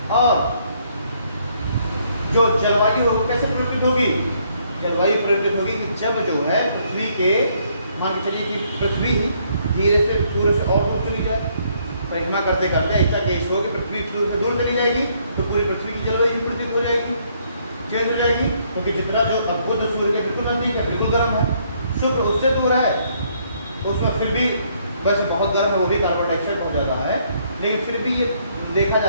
और जो जलवायु है वो कैसे परिवर्तित होगी, जलवायु परिवर्तित होगी कि जब जो है पृथ्वी के, मान के चलिए कि पृथ्वी धीरे से सूर्य से और दूर चली जाए, परिक्रमा करते करते ऐसा केस हो कि पृथ्वी सूर्य से दूर चली जाएगी, तो पूरी पृथ्वी की जलवायु परिवर्तित हो जाएगी, चेंज हो जाएगी। क्योंकि जितना जो अद्भुत सूर्य के बिल्कुल नजदीक है, बिल्कुल गर्म है, शुक्र उससे दूर है, उसमें फिर भी वैसे बहुत गर्म है, वो भी कार्बन डाइऑक्साइड हो जाता है, लेकिन फिर भी ये देखा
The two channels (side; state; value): both; inverted; correlation -0.68